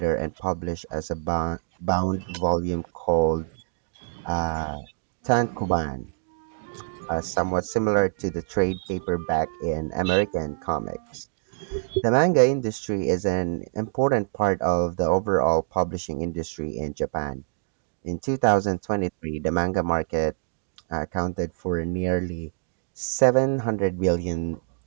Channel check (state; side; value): silent; left; digital silence